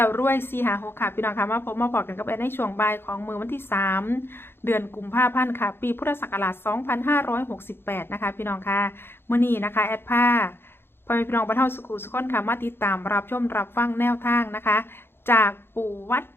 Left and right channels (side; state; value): right; late; 0.11 ms